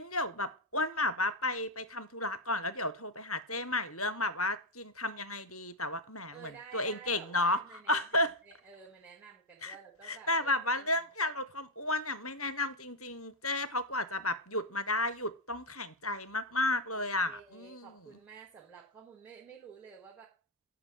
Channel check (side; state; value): both; normal; correlation 0.03